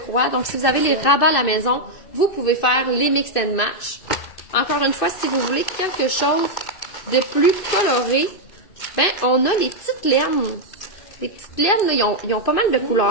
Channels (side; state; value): right; late; 2.6 ms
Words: Donc si vous avez les rabats à la maison, vous pouvez faire les mix and match. Encore une fois, si vous voulez quelque chose de plus coloré, ben on a les petites laines. Les petites laines, là, ils ont pas mal de